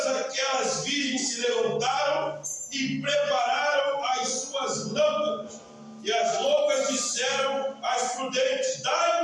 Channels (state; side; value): identical; both; correlation 1.00